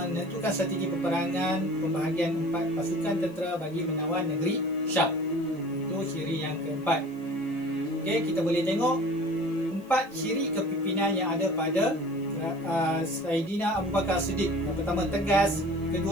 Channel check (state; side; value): noise; left; hiss, 28 dB below the sound